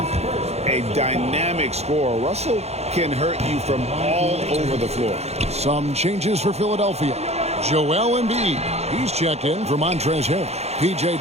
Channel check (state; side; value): late; left; 0.31 ms